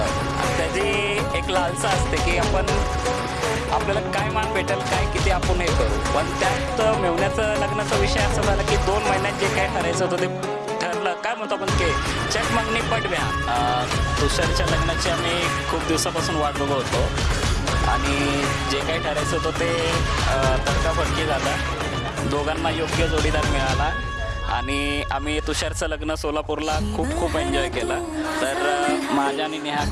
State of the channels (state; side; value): identical; both; correlation 1.00